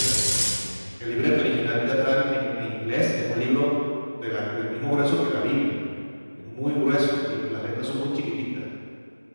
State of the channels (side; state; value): both; inverted; correlation -1.00